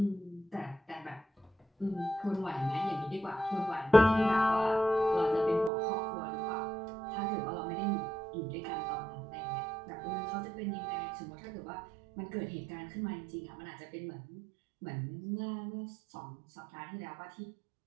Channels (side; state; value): left; drops out; at 5.7 s